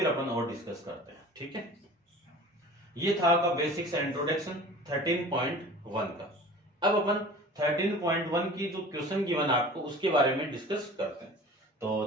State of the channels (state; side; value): normal; both; correlation 0.41